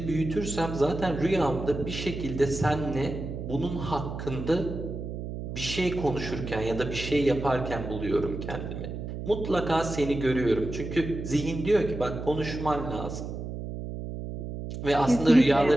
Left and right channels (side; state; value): right; noise; hum, 7 dB below the sound